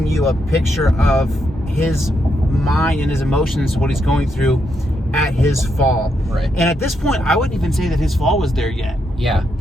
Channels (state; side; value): normal; both; correlation 0.80